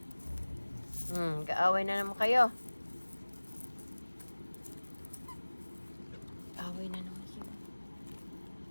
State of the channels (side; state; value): both; inverted; correlation -1.00